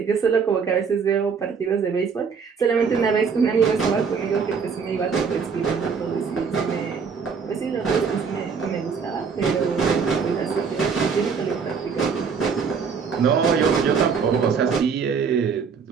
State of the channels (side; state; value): left; quieter; 5.9 dB